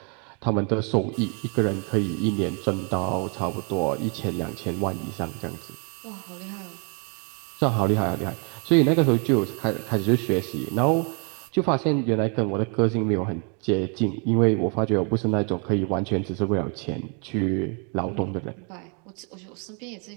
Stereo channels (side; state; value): left; quieter; 36.9 dB